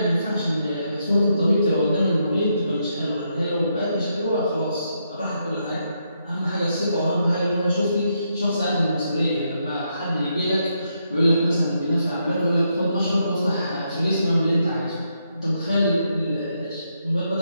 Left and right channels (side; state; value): both; inverted; correlation -0.79